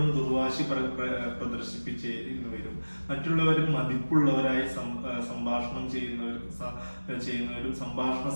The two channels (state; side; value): inverted; both; correlation -1.00